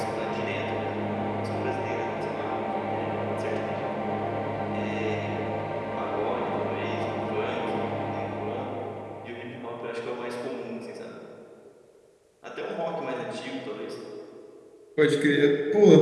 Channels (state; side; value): identical; both; correlation 1.00